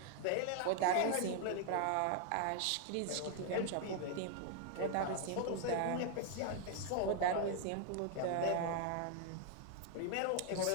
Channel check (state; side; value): different; both; correlation 0.00